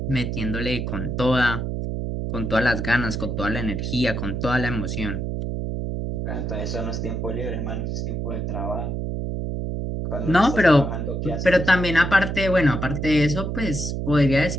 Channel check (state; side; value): noise; right; hum, 3 dB below the sound